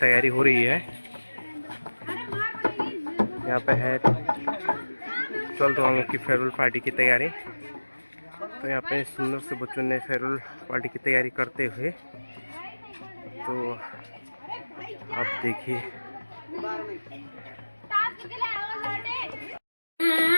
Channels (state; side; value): inverted; both; correlation -1.00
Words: तैयारी हो रही है। यहाँ पे है 12th वालों की फेयरवेल पार्टी की तैयारी। तो यहाँ पे सुंदर से बच्चों ने फेयरवेल पार्टी की तैयारी करते हुए, तो आप देखिए।